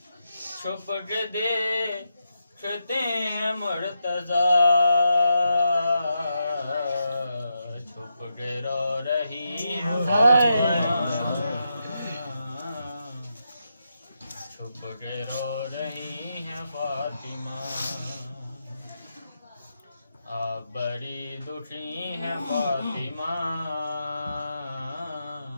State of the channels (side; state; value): both; inverted; correlation -0.85